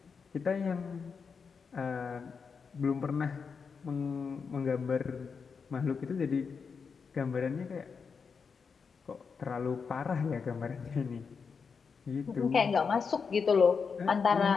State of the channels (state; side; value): quieter; right; 5.6 dB